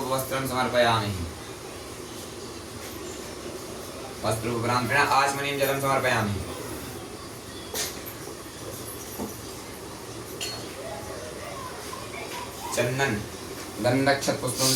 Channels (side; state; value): right; noise; hum, 28 dB below the sound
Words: समर्पयामि। वस्त्रोपरांत आचमनीं जलं समर्पयामि। चंदन गंधक्षत पुष्पं